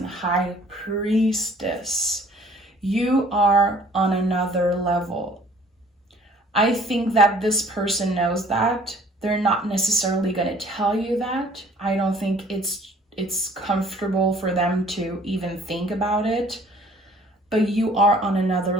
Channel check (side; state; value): both; normal; correlation 0.55